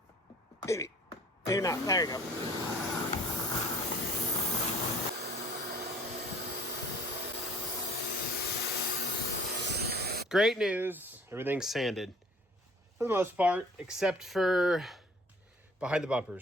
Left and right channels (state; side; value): normal; both; correlation 0.54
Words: Maybe. Maybe not. There you go. Great news. Everything's sanded for the most part, except for behind the